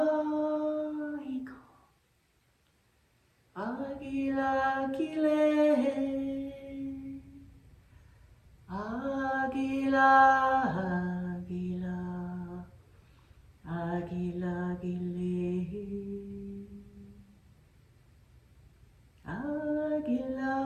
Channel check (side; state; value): both; identical; correlation 1.00